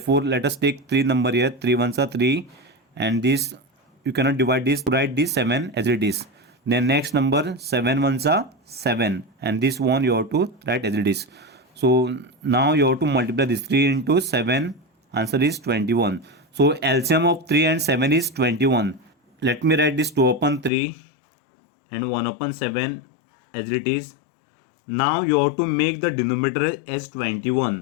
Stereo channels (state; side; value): drops out; right; at 20.7 s